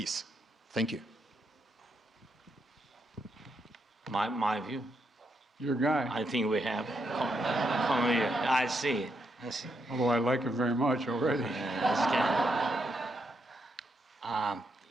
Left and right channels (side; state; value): both; normal; correlation 0.80